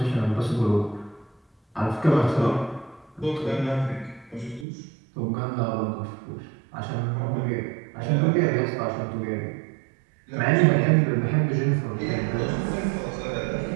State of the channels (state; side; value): drops out; left; at 4.7 s